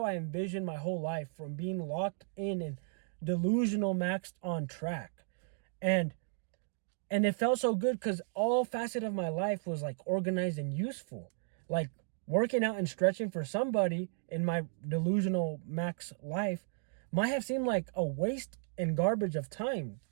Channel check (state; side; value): silent; left; digital silence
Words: I envision my whole life, from being locked in and delusional maxed on track. And it felt so good because all facet of my life was like organized and useful. Like, working out and stretching for somebody in my delusional max life might have seemed like a waste and garbage of time.